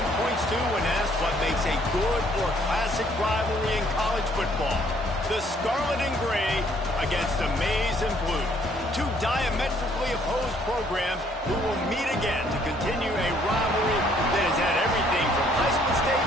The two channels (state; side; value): normal; both; correlation 0.64